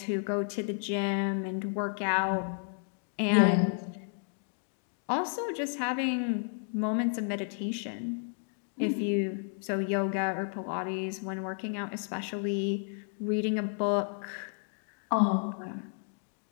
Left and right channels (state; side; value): silent; right; 56 dB below the other